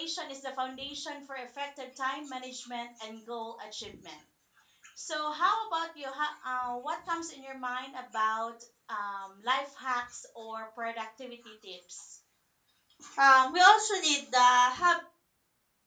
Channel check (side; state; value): both; identical; correlation 1.00